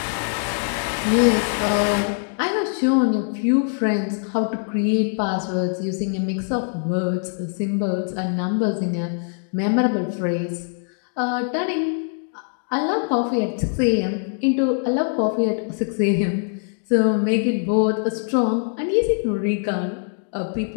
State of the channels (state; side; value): silent; right; 58 dB below the other